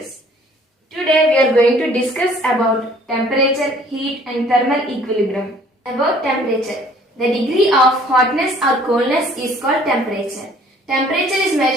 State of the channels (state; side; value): normal; both; correlation 0.56